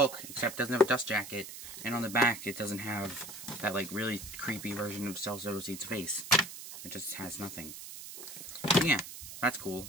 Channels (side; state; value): right; noise; hiss, 11 dB below the sound